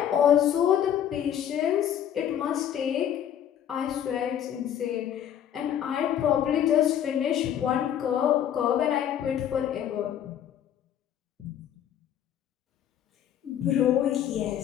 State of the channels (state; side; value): quieter; right; 10.0 dB